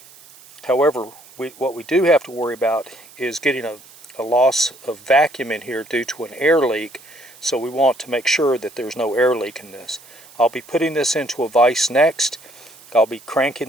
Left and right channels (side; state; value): right; noise; hiss, 23 dB below the sound